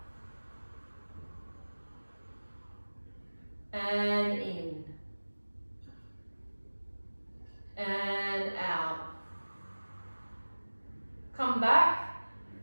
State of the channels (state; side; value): inverted; both; correlation -1.00